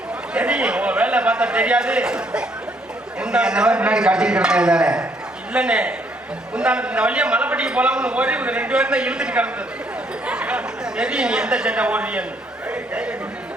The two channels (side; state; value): both; normal; correlation 0.69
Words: தெரியும் உன் வேலை பார்த்தா தெரியாது. இல்லண்ணே, இந்த வழியா மலைப்பட்டிக்கு போலாம்னு ஓடி ஒரு 2 பேரும் தான் இழுத்துட்டு கிடந்தது. தெரியும் நீ எந்த சண்டை ஓடுறியன்னு.